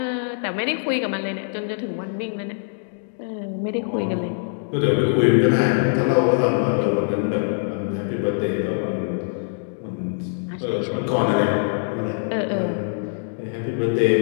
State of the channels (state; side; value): silent; right; digital silence